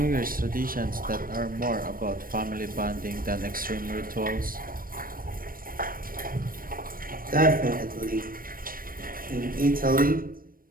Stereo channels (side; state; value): left; late; 0.41 ms